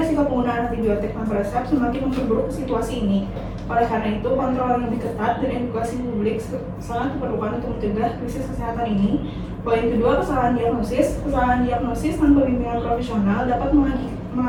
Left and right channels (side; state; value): both; identical; correlation 1.00